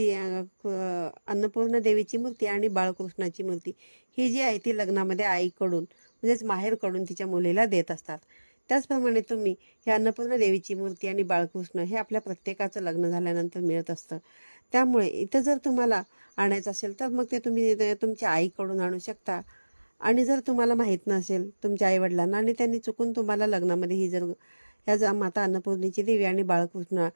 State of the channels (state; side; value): inverted; both; correlation -1.00